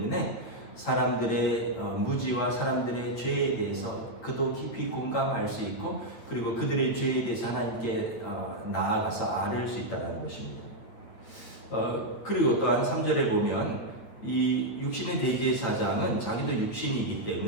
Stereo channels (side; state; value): right; late; 9.0 ms